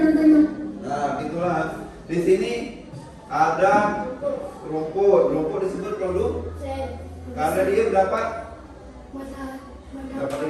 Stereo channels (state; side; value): identical; both; correlation 1.00